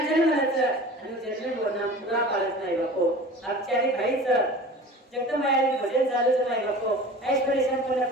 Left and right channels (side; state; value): both; normal; correlation 0.39